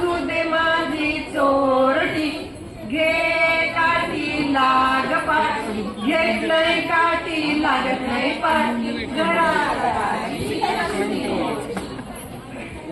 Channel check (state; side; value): identical; both; correlation 1.00